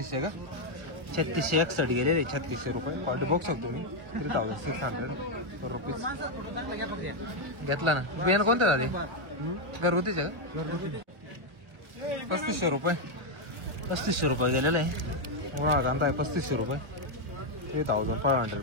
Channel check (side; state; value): left; late; 1.4 ms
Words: का 3661 गेलेले 3600 रुपये. क्वालिटी बघू शकतो तुम्ही 3600 रुपीज. घेतला ना. बियाणं कोणतं दादा? घरगुतीचे का? 3500 रुपये 3500 रुपये गेलेले आहे. उन्हाळा कांदा आहे 3500 रुपये 3500